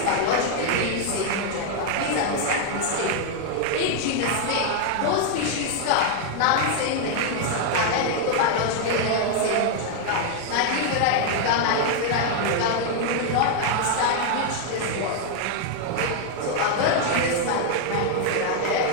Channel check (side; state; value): both; different; correlation 0.00